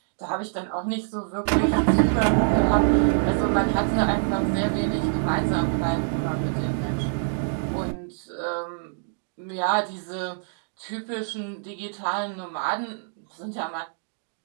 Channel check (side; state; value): left; silent; digital silence